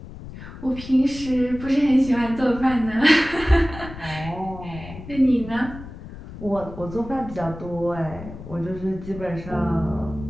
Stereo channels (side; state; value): left; noise; rumble, 13 dB below the sound